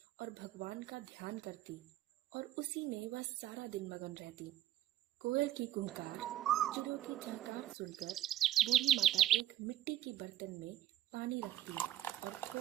और भगवान का ध्यान करती और उसी में वह सारा दिन मगन रहती। कोयल की कुहकार, चिड़ियों की चहकार सुनकर बूढ़ी माता एक मिट्टी के बर्तन में पानी रखती और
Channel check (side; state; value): left; quieter; 13.3 dB